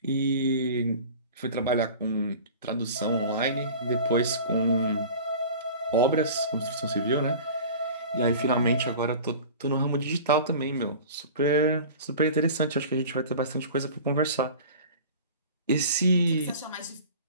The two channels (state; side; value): inverted; both; correlation -0.39